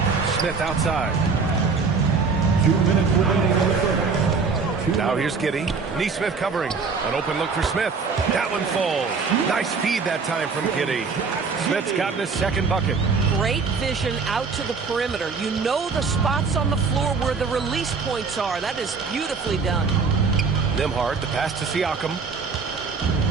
Smith outside. 2 minutes remaining. Now here's Giddey. Nesmith covering. An open look for Smith. That one falls. Nice feed that time from Giddey. Smith's gotten his second bucket. Great vision out to the perimeter. You know the spots on the floor where the release points are. That is beautifully done. Nembhard, the pass to Siakam.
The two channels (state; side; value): quieter; left; 5.0 dB